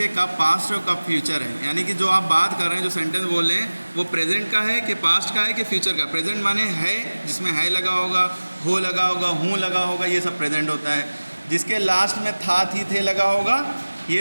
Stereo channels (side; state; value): both; inverted; correlation -1.00